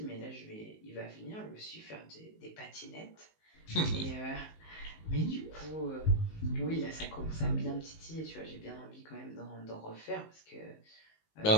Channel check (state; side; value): late; right; 19 ms